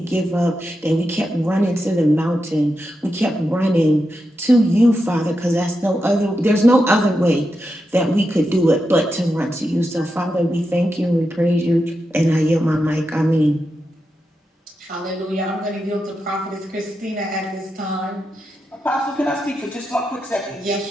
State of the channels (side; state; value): both; normal; correlation 0.87